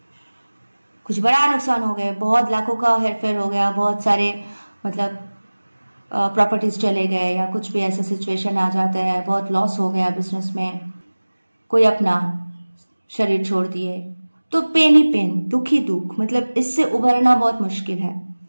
कुछ बड़ा नुकसान हो गया, बहुत लाखों का हेरफेर हो गया, बहुत सारे मतलब प्रॉपर्टीज चले गए, या कुछ भी ऐसा सिचुएशन आ जाता है, बहुत लॉस हो गया बिजनेस में, कोई अपना शरीर छोड़ दिए, तो पेन ही पेन, दुख ही दुख, मतलब इससे उभरना बहुत मुश्किल है।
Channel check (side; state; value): both; inverted; correlation -1.00